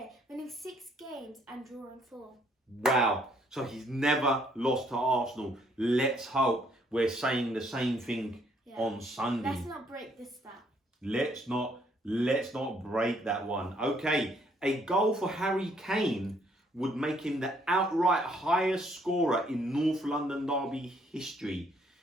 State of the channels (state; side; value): normal; both; correlation 0.67